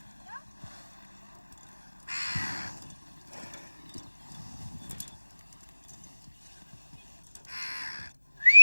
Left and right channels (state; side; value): inverted; both; correlation -1.00